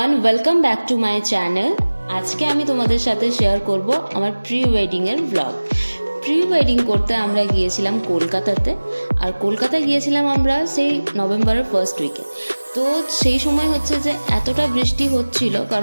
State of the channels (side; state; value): both; inverted; correlation -1.00